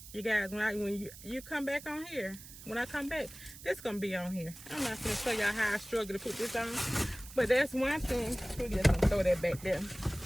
You guys, when you come back on here, when I come back, this gonna be on here. I'm not gonna show y'all how I struggle to put this on, but that's one thing. We're just gonna throw that back there.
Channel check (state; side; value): noise; right; hiss, 16 dB below the sound